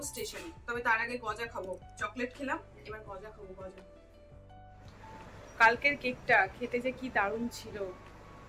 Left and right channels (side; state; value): both; identical; correlation 1.00